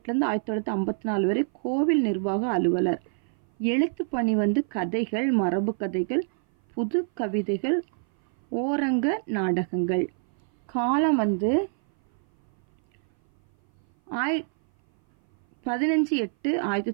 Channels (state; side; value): silent; left; 57 dB below the other